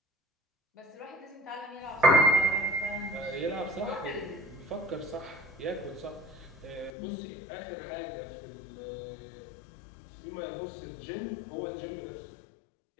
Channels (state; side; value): drops out; right; at 6.9 s